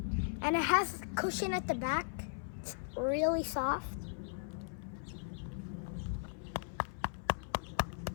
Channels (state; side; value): silent; right; 53 dB below the other